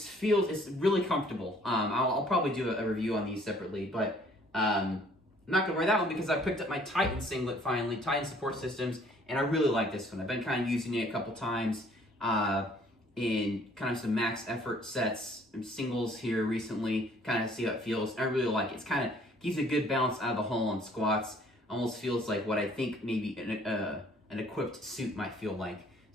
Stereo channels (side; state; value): both; normal; correlation 0.58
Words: really comfortable. I'll probably do a review on these separately, but I'm not gonna wear that one because I picked up my Titan Singlet finally, Titan Support Systems, and I really like this one. I've been kind of using it a couple times in kind of some max effort sets and singles here recently, kind of see how it feels. I really like it. It's kind of gives a good balance out of the hole on squats. Almost feels like what I think maybe an equipped suit might feel like.